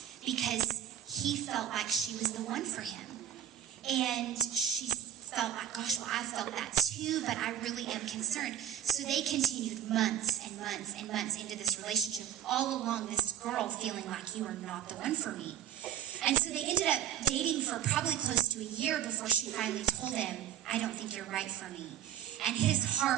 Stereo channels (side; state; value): left; quieter; 10.9 dB